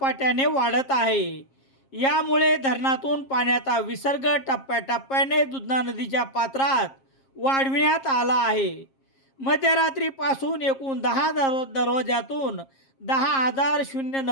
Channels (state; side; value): late; right; 7.5 ms